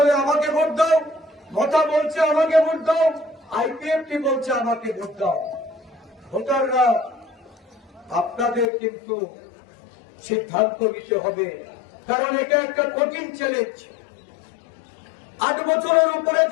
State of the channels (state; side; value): drops out; right; at 8.7 s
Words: আমাকে ভোট দাও, মতা বলছে আমাকে ভোট দাও, আইপিএফটি বলছে আমাকে ভোট দাও। ভোটাররা আপনাদের কিন্তু সিদ্ধান্ত নিতে হবে, কারণ এটা একটা কঠিন চ্যালেঞ্জ। 8 বছরের উপরে